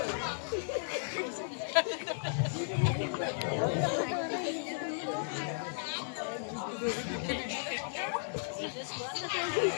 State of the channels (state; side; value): silent; right; digital silence